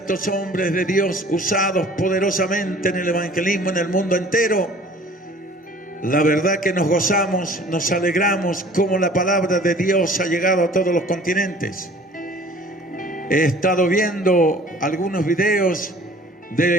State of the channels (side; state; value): both; normal; correlation 0.49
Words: hombres de Dios usados poderosamente en el evangelismo en el mundo entero, la verdad que nos gozamos, nos alegramos, como la palabra de Dios ha llegado a todos los continentes. He estado viendo algunos videos